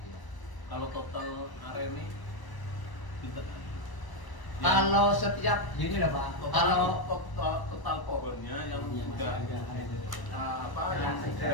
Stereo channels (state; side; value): late; right; 1.0 ms